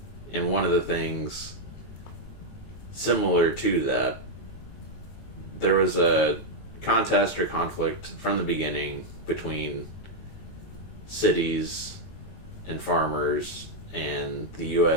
And one of the things similar to that, there was a contest or conflict from the beginning between cities and farmers, and the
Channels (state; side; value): late; right; 19 ms